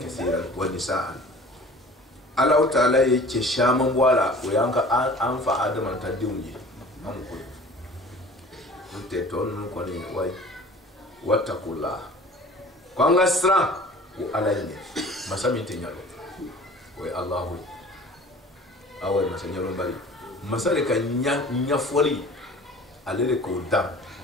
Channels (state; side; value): normal; both; correlation 0.45